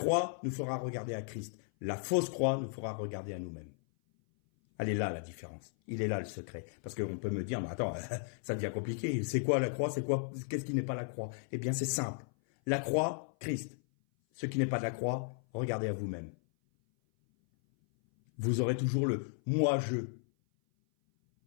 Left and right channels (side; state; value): right; silent; 54 dB below the other